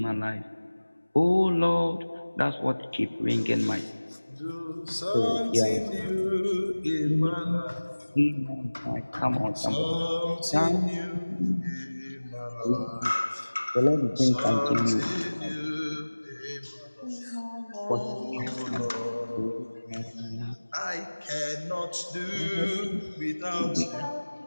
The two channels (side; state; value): both; inverted; correlation -1.00